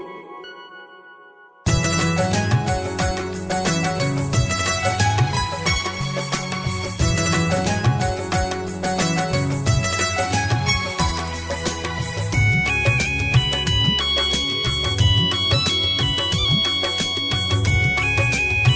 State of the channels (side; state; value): both; identical; correlation 1.00